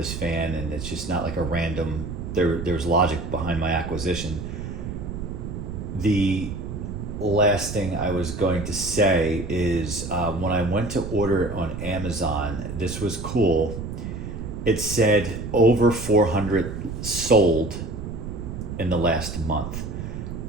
fan, and it's just not like a random, there's logic behind my acquisition. The last thing I was going to say is when I went to order it on Amazon, this was cool. it said over 400 sold in the last month.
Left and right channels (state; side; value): noise; right; rumble, 7 dB below the sound